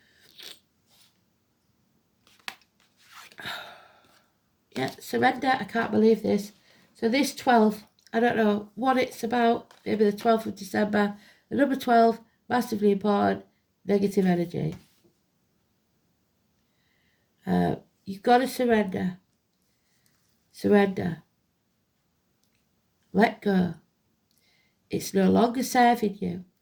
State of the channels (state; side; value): identical; both; correlation 1.00